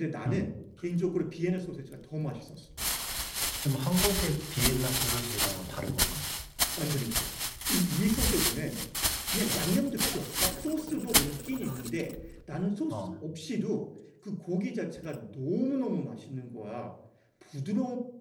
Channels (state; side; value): identical; both; correlation 1.00